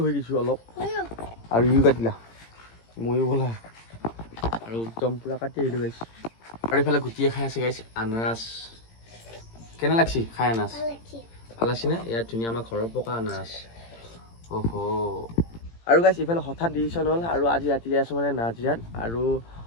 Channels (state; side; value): late; right; 18 ms